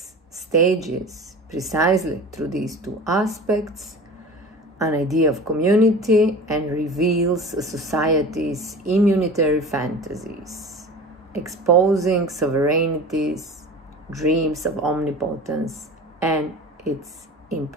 stages precisely through these two aspects an idea of community and reveals a society's immunitary fantasies, exposing sovereignties, dreams of omnipotence, and its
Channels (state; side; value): normal; both; correlation 0.36